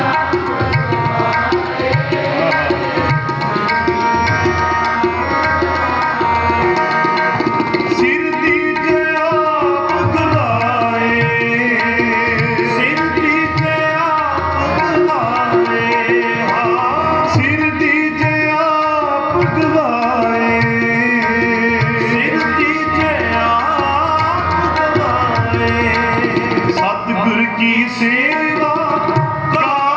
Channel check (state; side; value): noise; right; hum, 27 dB below the sound